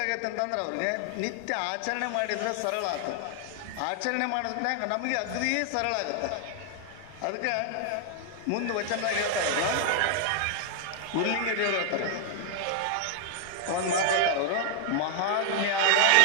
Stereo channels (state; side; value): different; both; correlation 0.00